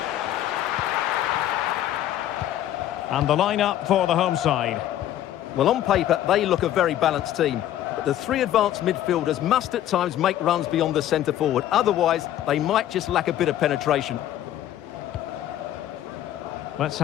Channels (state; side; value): quieter; right; 12.3 dB